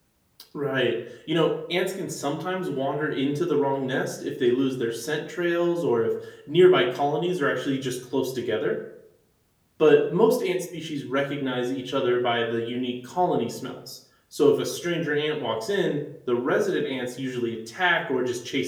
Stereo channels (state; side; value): identical; both; correlation 1.00